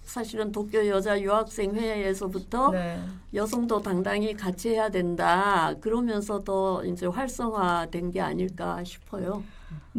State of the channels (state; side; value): identical; both; correlation 1.00